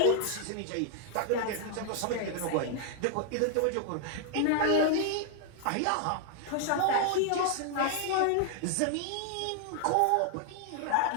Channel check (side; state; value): both; different; correlation 0.00